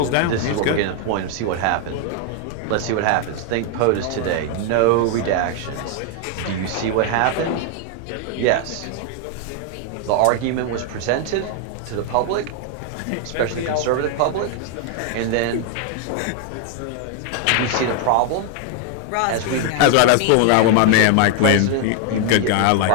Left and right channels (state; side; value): different; both; correlation 0.00